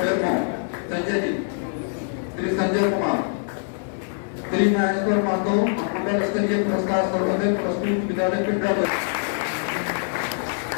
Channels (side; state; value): right; silent; 63 dB below the other